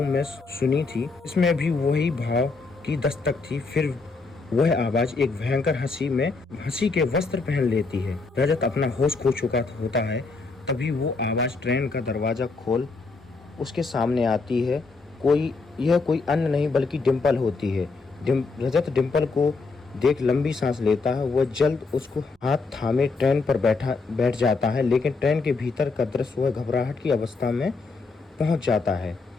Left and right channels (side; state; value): right; quieter; 4.0 dB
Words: में सुनी थी। इसमें भी वही भाव की दस्तक थी। फिर वह आवाज एक भयंकर हंसी के वस्त्र पहन लेती है। रजत अपना होश खो चुका होता है। तभी वो आवाज ट्रेन का दरवाजा खोल उसके सामने आती है। यह कोई अन्य नहीं बल्कि डिम्पल होती है। रजत डिम्पल को देख लंबी सांस लेता है। वह जल्द उसको हाथ थामे ट्रेन पर बैठ जाता है, लेकिन ट्रेन के भीतर का दृश्य वह घबराहट की अवस्था में पहुंच जाता है।